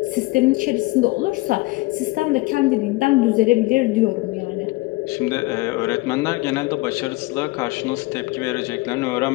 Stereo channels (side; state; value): right; quieter; 21.9 dB